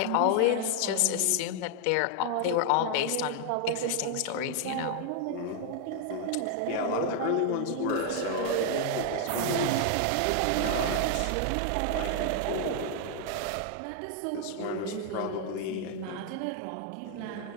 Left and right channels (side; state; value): both; different; correlation 0.00